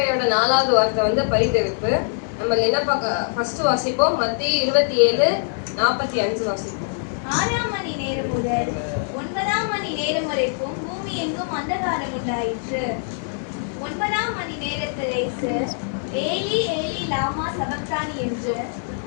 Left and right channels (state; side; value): silent; right; digital silence